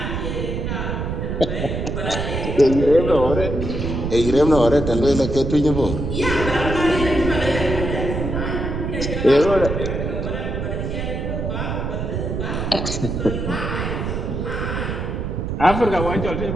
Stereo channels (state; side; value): noise; right; rumble, 3 dB below the sound